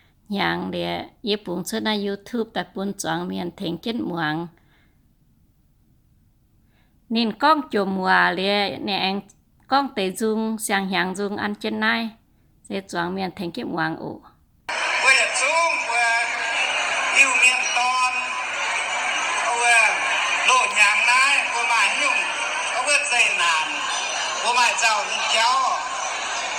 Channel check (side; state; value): both; identical; correlation 1.00